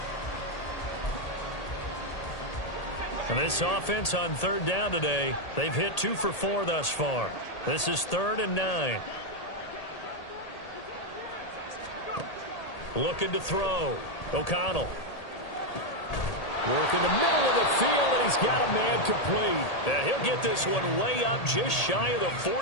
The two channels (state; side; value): late; right; 1.8 ms